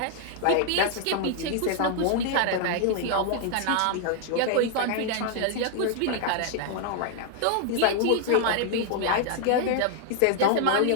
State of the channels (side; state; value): both; different; correlation 0.00